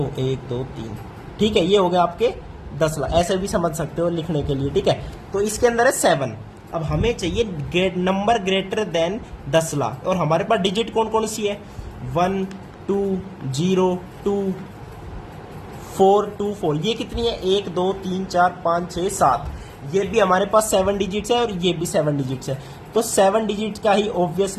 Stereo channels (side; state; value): both; identical; correlation 1.00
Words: 1 2 3, ठीक है। ये हो गया आपके 10 लाख, ऐसे भी समझ सकते हो लिखने के लिए, ठीक है। तो इसके अंदर है 7। अब हमें चाहिए नंबर ग्रेटर देन 10 लाख, और हमारे पास डिजिट कौन कौन सी है, 1 2 0 2 4 2 4, ये कितनी है, 1 2 3 4 5 6 7, ये भी हमारे पास 7 डिजिट्स है और ये भी 7 डिजिट्स है। तो 7 डिजिट का ही